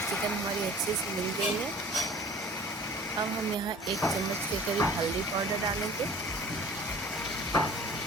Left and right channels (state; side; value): normal; both; correlation 0.46